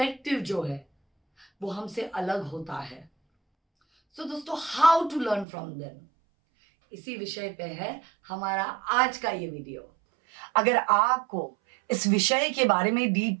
जो है वो हमसे अलग होता है। सो दोस्तों, how to learn from them, इसी विषय पे है हमारा आज का ये वीडियो। अगर आपको इस विषय के बारे में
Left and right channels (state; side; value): drops out; left; at 5.5 s